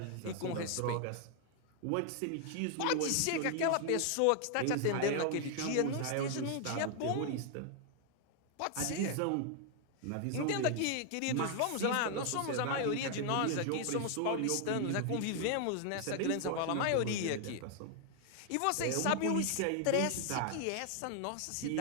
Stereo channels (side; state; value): both; different; correlation 0.00